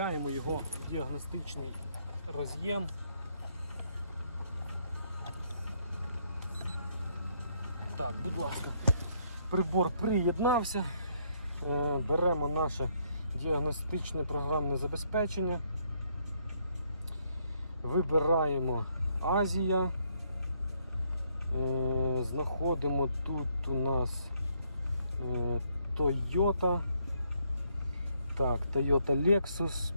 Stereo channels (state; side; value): inverted; both; correlation -0.71